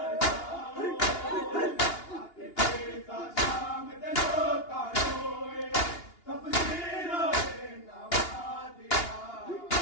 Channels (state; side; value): late; right; 2.8 ms